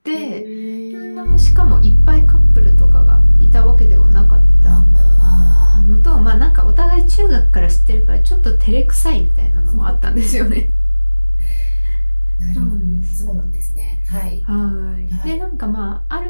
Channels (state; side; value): inverted; both; correlation -1.00